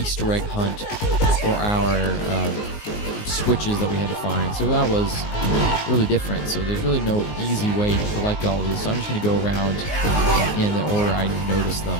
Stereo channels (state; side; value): late; right; 19 ms